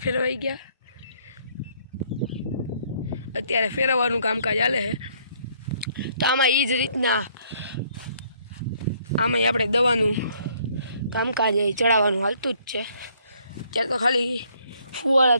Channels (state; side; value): inverted; both; correlation -0.64